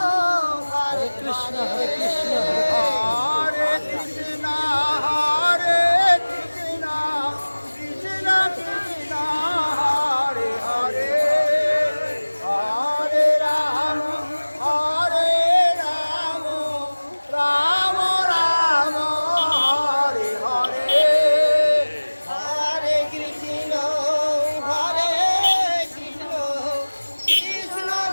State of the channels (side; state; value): both; inverted; correlation -1.00